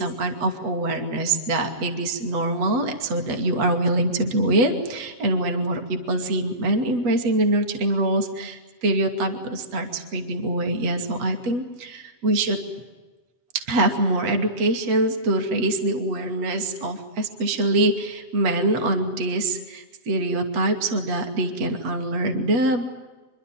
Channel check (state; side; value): late; left; 8.2 ms